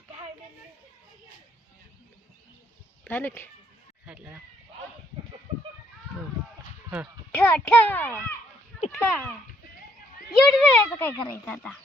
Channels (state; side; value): normal; both; correlation 0.69